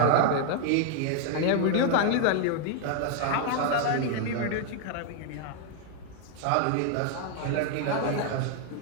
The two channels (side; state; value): both; different; correlation 0.00